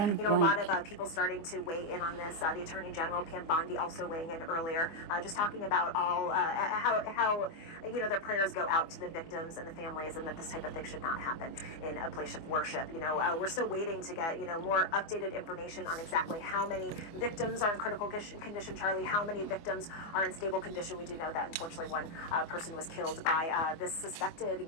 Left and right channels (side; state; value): right; late; 24 ms